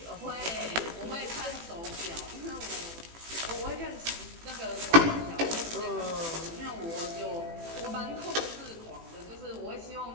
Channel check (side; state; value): left; late; 18 ms